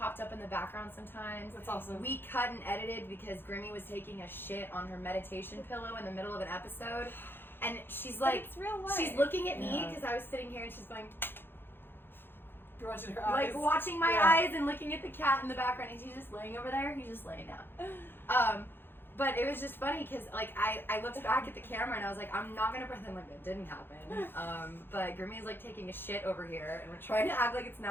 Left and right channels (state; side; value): late; right; 0.10 ms